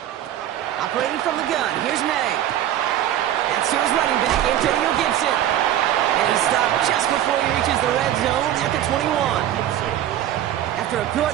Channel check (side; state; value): left; quieter; 11.8 dB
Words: Operating from the gun, here's May. That's to his running back, Antonio Gibson. And he's stopped just before he reaches the red zone at the 21. After a good